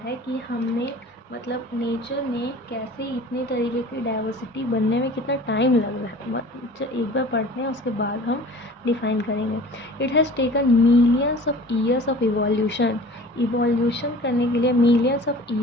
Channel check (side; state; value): both; normal; correlation 0.43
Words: है कि हमने मतलब नेचर ने कैसे इतनी तरीके की डाइवर्सिटी बनने में कितना टाइम लग रहा है, एक बार पढ़ते हैं उसके बाद हम डिफाइन करेंगे। It has taken millions of years of evolution, evolution करने के लिए मिलियंस ऑफ